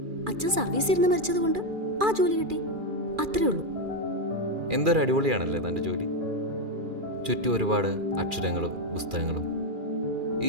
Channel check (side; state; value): left; late; 2.4 ms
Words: അച്ഛൻ സർവീസ് ഇരുന്ന് മരിച്ചത് കൊണ്ട് ആ ജോലി കിട്ടി, അത്രേ ഉള്ളൂ. എന്തൊരു അടിപൊളിയാണല്ലേ തൻ്റെ ജോലി. ചുറ്റും ഒരുപാട് അക്ഷരങ്ങളും പുസ്തകങ്ങളും. ഈ